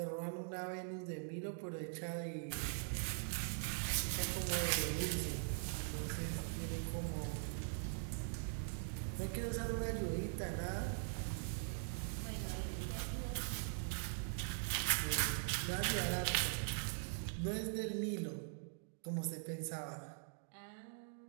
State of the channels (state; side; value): silent; left; digital silence